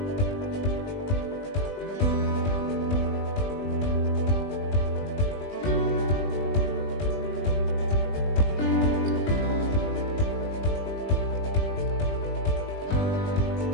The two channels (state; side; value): late; right; 20 ms